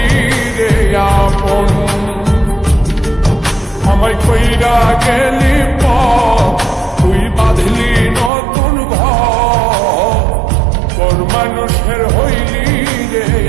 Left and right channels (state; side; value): drops out; left; at 8.3 s